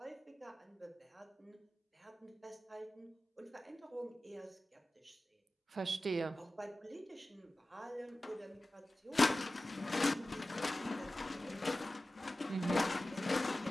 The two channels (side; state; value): both; normal; correlation 0.95